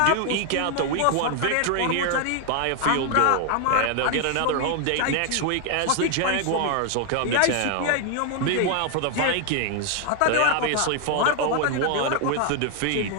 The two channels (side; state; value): both; different; correlation 0.00